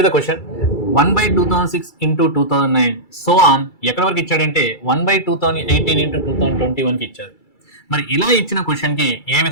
the question 1/2006 into 2009 so on ఎక్కడి వరకు ఇచ్చాడంటే 1/2018 into 2021కి ఇచ్చారు. మరి ఇలా ఇచ్చిన క్వశ్చన్కి ఏ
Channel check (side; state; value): right; late; 2.3 ms